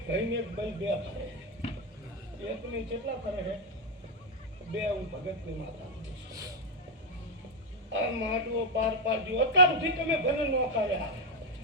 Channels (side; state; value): both; normal; correlation 0.04